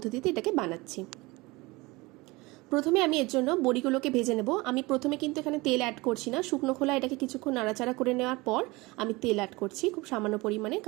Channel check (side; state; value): left; quieter; 23.0 dB